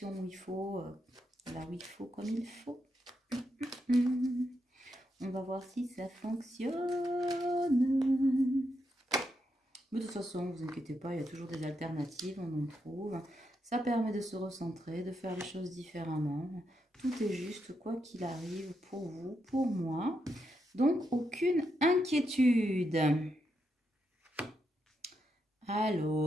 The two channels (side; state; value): both; normal; correlation 0.82